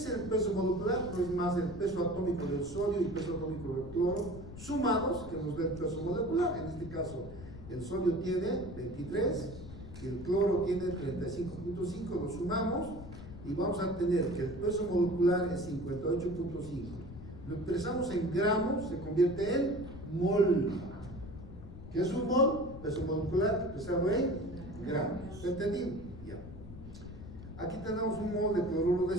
el peso molecular? Pues más el peso atómico del sodio y el peso atómico del cloro sumados, que nos da el peso molecular. En este caso, el sodio tiene 23 y el cloro tiene 35.5, lo sumamos y vamos a tener que el peso molecular es 58.5. Lo expresamos en gramos, se convierte en mol. ¿Qué es un mol? Peso molecular expresado en gramos. ¿Está entendido? Ya. Aquí tenemos un mol de cloruro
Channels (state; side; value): noise; left; rumble, 13 dB below the sound